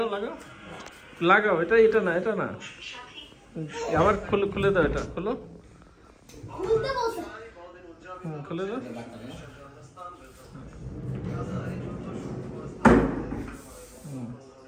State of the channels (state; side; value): identical; both; correlation 1.00